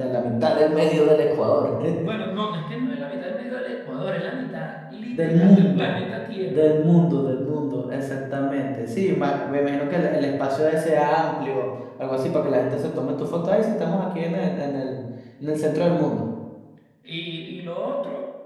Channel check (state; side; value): identical; both; correlation 1.00